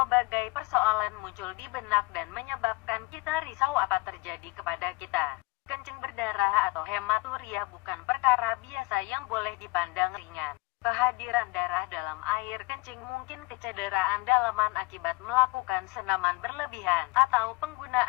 persoalan muncul di benak dan menyebabkan kita risau apa terjadi kepada kita. Kencing berdarah atau hematuria bukan perkara biasa yang boleh dipandang ringan. Kehadiran darah dalam air kencing mungkin kecederaan dalaman akibat melakukan senaman berlebihan atau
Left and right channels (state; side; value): quieter; right; 24.3 dB